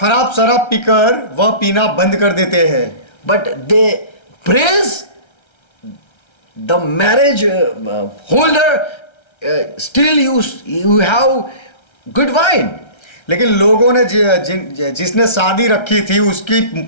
शराब पीकर वह पीना बंद कर देते हैं। But they praise the marriage holder, still you have good wine. लेकिन लोगों ने जिसने शादी रखी थी उसकी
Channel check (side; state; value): right; late; 1.3 ms